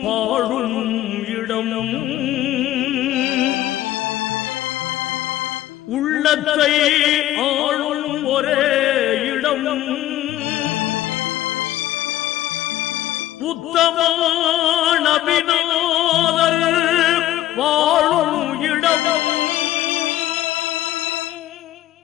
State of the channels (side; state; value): right; quieter; 13.9 dB